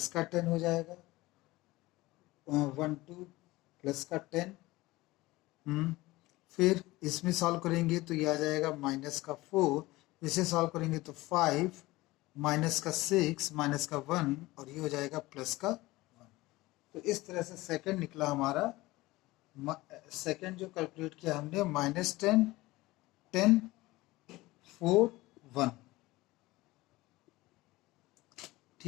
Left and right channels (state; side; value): quieter; right; 19.5 dB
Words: का 10 हो जाएगा, 1 2 प्लस का 10। फिर इसमें सॉल्व करेंगे तो ये आ जाएगा माइनस का 4। इसे सॉल्व करेंगे तो 5, माइनस का 6, माइनस का 1 और ये हो जाएगा प्लस का 1। तो इस तरह से सेकंड निकला हमारा। सेकंड जो कैलकुलेट किया हमने -10 10 4 1।